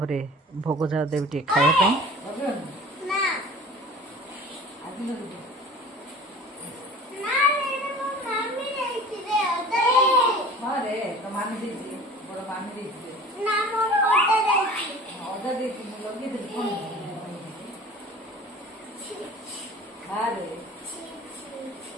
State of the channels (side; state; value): both; normal; correlation 0.43